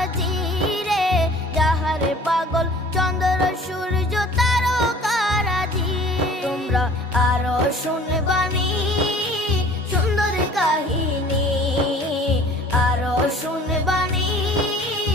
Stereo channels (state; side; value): normal; both; correlation 0.49